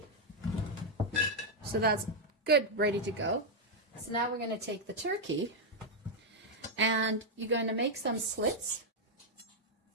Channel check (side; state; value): both; normal; correlation -0.01